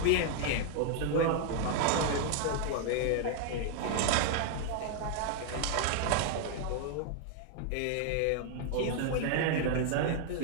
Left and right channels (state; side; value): different; both; correlation 0.00